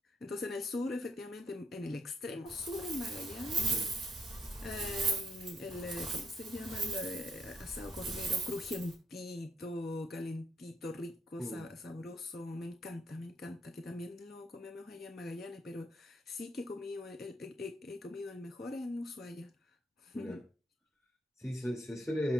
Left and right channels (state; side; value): normal; both; correlation 0.74